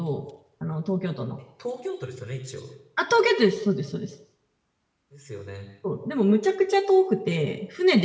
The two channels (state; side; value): identical; both; correlation 1.00